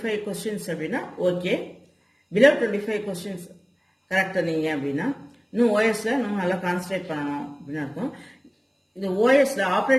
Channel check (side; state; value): both; identical; correlation 1.00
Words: questions அப்படின்னா ஓகே, below 25 questions கரெக்டா நீங்க அப்படின்னா இன்னும் ஓஎஸ்ல நம்ம நல்லா கான்சன்ட்ரேட் பண்ணணும் அப்படின்னு இருக்கும். இந்த ஓஎஸ்ல